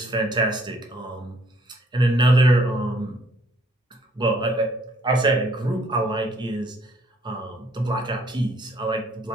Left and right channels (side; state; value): both; normal; correlation 0.63